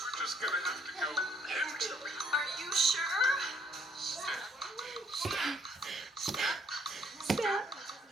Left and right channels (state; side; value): normal; both; correlation 0.65